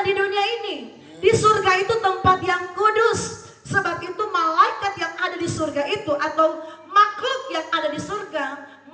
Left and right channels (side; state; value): both; identical; correlation 1.00